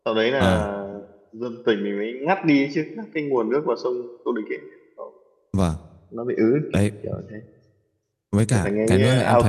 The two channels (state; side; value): identical; both; correlation 1.00